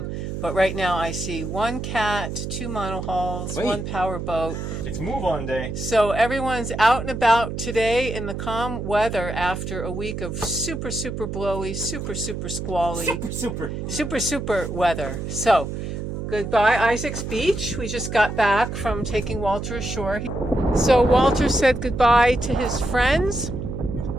but right now I see one cat, two monohulls, one power boat. It's move on day. So everyone's out and about today in the calm weather after a week of super, super blowy, super, super squally, super weather. So, goodbye Isaac's Beach. We just got back from taking Walter ashore. So Walter said goodbye to his friends.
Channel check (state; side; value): noise; right; hum, 5 dB below the sound